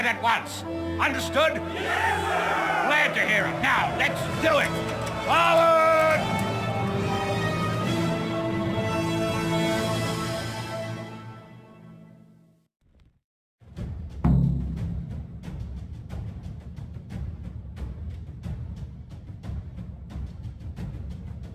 at once. Understood? Yes, sir! Glad to hear it. Now, let's do it! Forward!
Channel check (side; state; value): both; identical; correlation 1.00